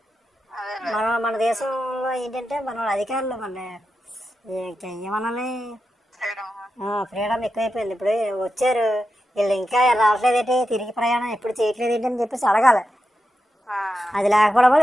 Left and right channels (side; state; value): both; normal; correlation 0.89